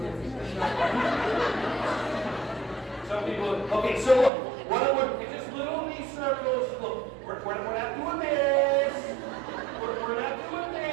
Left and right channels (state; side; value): drops out; left; at 4.3 s